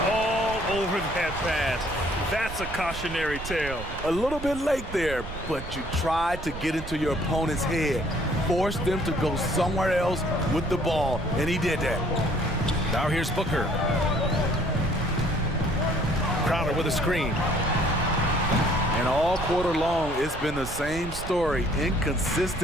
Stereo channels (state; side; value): noise; right; rumble, 10 dB below the sound